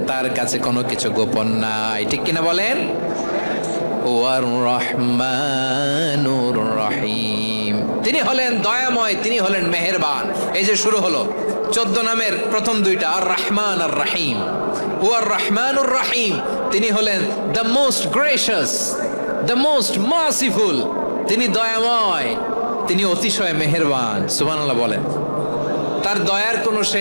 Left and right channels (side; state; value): both; inverted; correlation -1.00